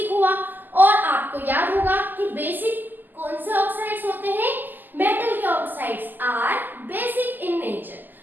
हुआ। और आपको याद होगा कि बेसिक कौन से ऑक्साइड्स होते हैं, मेटल के oxides are basic in nature.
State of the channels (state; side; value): late; left; 0.088 ms